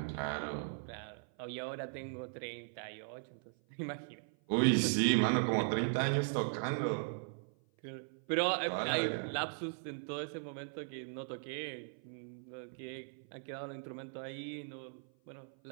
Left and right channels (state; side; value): silent; left; 52 dB below the other